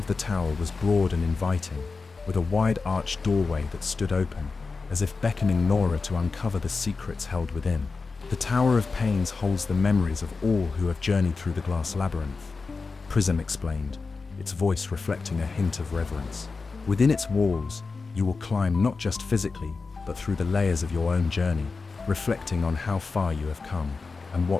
the tower was broad and inviting, with a wide arched doorway that stood open, as if beckoning Nora to uncover the secrets held within. The Tower of Pains holds the memories of all who have journeyed through the glass labyrinth, Prism explained, its voice reflecting a hint of reverence. Within its walls, you will climb not just physically, but through the layers of your own journey, reflecting on how far you have come and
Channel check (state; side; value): quieter; right; 4.3 dB